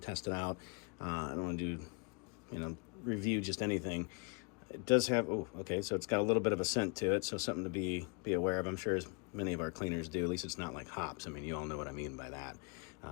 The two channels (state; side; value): quieter; right; 33.7 dB